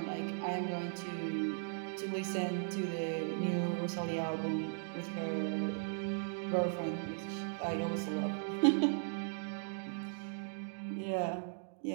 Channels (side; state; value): left; silent; digital silence